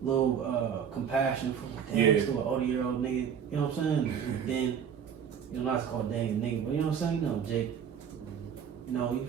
little compassion for him to an 80-year-old nigga. You know what I'm saying? And then you know, not to call Daniel nigga, but you know what I'm saying? You know, Jake. You know, he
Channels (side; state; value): left; quieter; 7.9 dB